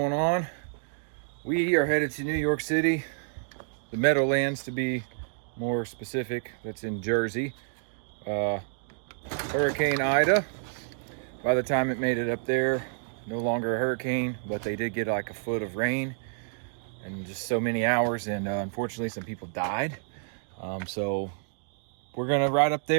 on? We are headed to New York City, the Meadowlands to be more specific. That's in Jersey. Hurricane Ida, by the time it made it up there, no longer a hurricane, but they did get like a foot of rain in just so many hours, and unfortunately some people died. So we're gonna ride up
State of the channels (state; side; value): silent; left; digital silence